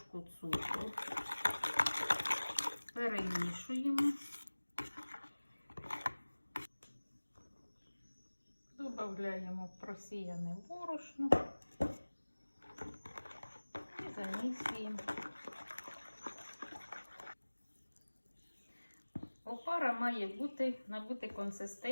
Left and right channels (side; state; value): both; inverted; correlation -1.00